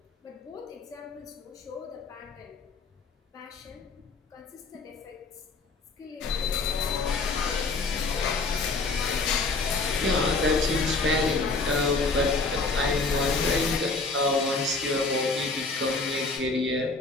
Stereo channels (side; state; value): right; quieter; 3.7 dB